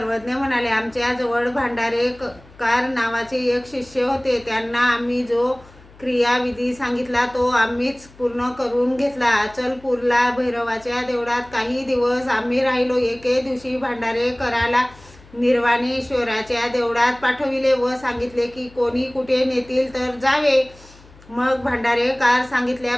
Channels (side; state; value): left; noise; hum, 24 dB below the sound